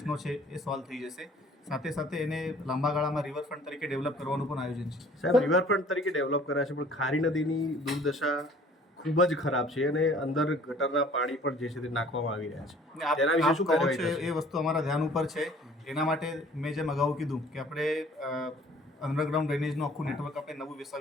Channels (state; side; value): normal; both; correlation 0.53